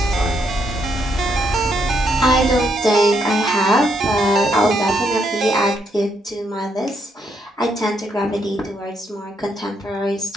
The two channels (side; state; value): both; normal; correlation 0.76